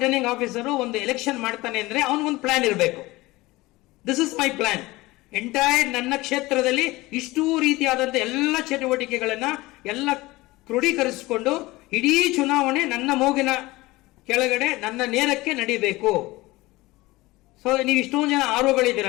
officer ಒಂದು election ಮಾಡ್ತಾನೆ ಅಂದ್ರೆ ಅವನಿಗೊಂದು ಪ್ಲಾನ್ ಇರಬೇಕು. This is my plan. Entire ನನ್ನ ಕ್ಷೇತ್ರದಲ್ಲಿ ಇಷ್ಟೂ ರೀತಿಯಾದಂತ ಎಲ್ಲ ಚಟುವಟಿಕೆಗಳನ್ನ ಎಲ್ಲ ಕ್ರೋಢೀಕರಿಸಿಕೊಂಡು ಇಡೀ ಚುನಾವಣೆ ನನ್ನ ಮೂಗಿನ ಕೆಳಗಡೆ ನನ್ನ ನೇರಕ್ಕೆ ನಡೀಬೇಕು. ಸೊ ನೀವು ಇಷ್ಟೊಂದು ಜನ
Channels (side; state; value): right; quieter; 20.1 dB